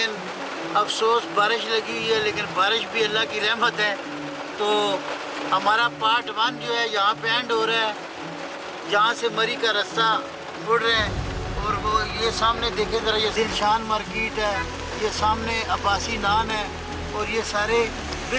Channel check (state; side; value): identical; both; correlation 1.00